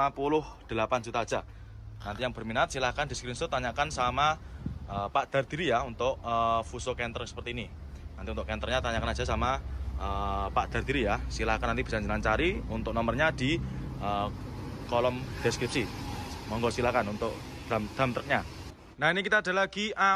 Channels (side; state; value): both; identical; correlation 1.00